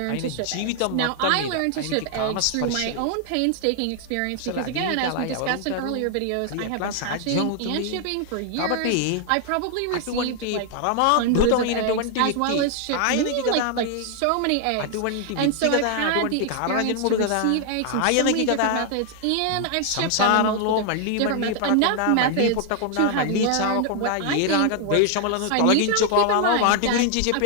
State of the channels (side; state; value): both; different; correlation 0.00